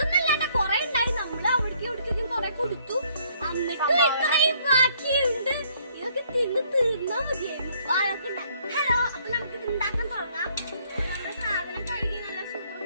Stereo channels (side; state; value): both; inverted; correlation -0.65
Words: കൊറേ ഉണ്ടായി. നമ്മള് അവിടേക്കും ഇവിടേക്കും കൊറേ കൊടുത്തു. എന്നിട്ട് ഇത്രയും ബാക്കിയുണ്ട്. ഇതൊക്കെ തിന്ന് തീർന്നാ മതിയായിരുന്നു. അതൊക്കെ ഉണ്ടാക്കും. ഹലോ, അപ്പൊ നമുക്കിത് ഉണ്ടാക്കാൻ തുടങ്ങാം. നമ്മുടെ സാധനം കഴുകി നല്ല